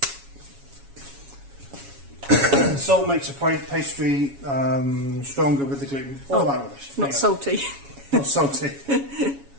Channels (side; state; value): left; late; 7.2 ms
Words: Salt makes a pastry stronger with the gluten. All that rubbish. Not salty. Not salty.